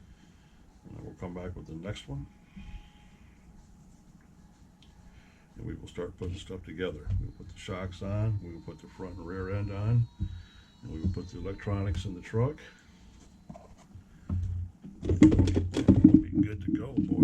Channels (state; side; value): identical; both; correlation 1.00